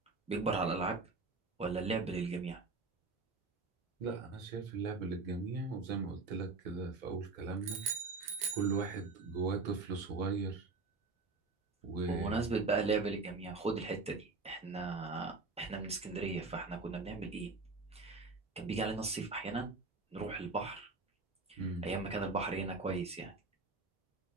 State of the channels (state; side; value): quieter; left; 3.8 dB